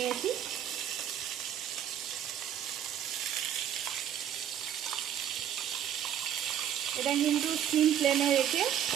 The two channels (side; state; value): left; quieter; 10.1 dB